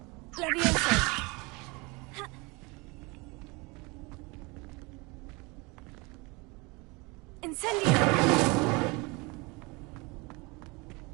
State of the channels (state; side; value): quieter; left; 26.8 dB